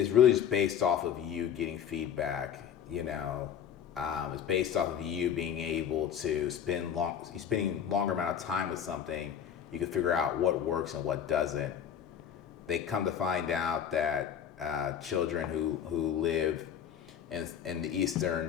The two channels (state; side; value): quieter; right; 8.8 dB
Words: really just based off of you getting feedback. It's based off of you being able to spending longer amount of time with something. You can figure out what works and what doesn't. They come to find out that children who live in the